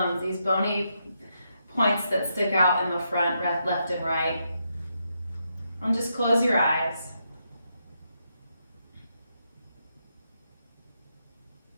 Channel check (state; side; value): inverted; both; correlation -0.81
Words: these bony points that stick out in the front, left and right. And just close your eyes.